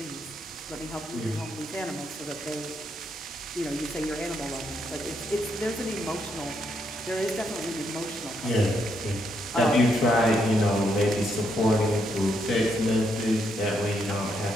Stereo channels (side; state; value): both; normal; correlation 0.77